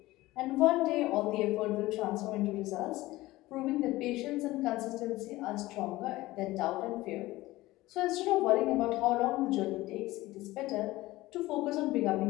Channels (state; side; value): quieter; right; 18.3 dB